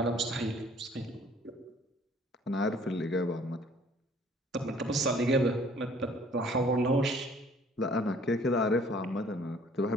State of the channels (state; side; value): normal; both; correlation 0.56